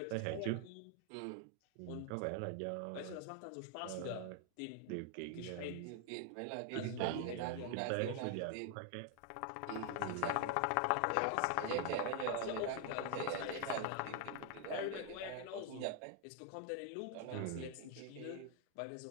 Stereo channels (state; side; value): different; both; correlation 0.00